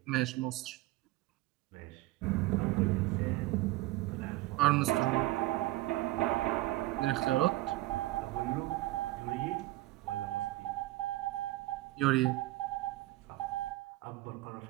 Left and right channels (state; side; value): quieter; left; 18.2 dB